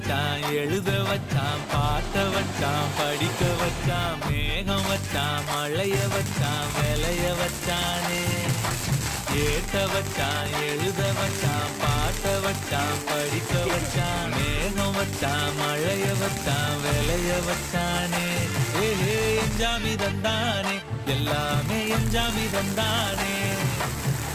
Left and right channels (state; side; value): identical; both; correlation 1.00